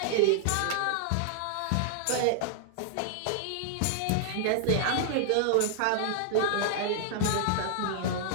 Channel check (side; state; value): both; different; correlation -0.01